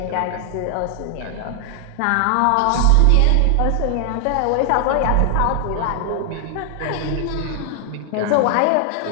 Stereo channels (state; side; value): different; both; correlation 0.00